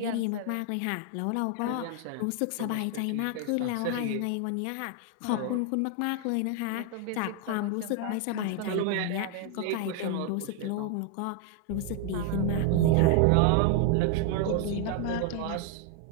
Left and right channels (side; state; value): both; different; correlation 0.00